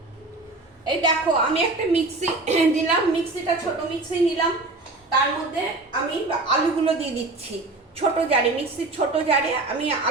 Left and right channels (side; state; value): left; quieter; 3.2 dB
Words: এই দেখো, আমি একটা মিক্সি দিলাম, মিক্সিটা ছোট মিক্সি নিলাম। তার মধ্যে আমি আলুগুলো দিয়ে দিচ্ছি ছোট জারে, মিক্সির ছোট জারে আমি